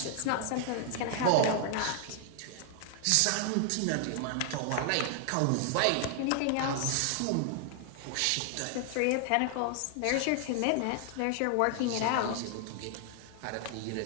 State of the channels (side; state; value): both; different; correlation 0.00